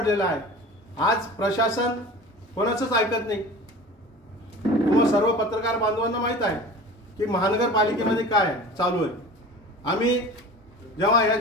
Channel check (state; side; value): normal; both; correlation 0.38